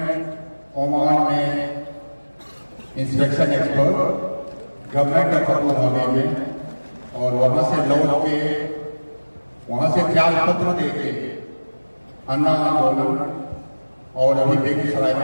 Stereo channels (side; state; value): both; inverted; correlation -1.00